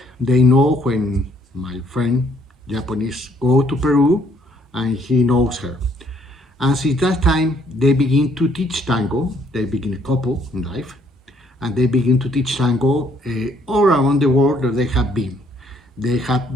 they know when my friend Japanese go to Peru, and he knows her. And since that time, they begin to teach tango. They begin a couple in life, and they begin to teach tango all around the world that they have been. They have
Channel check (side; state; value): both; normal; correlation 0.66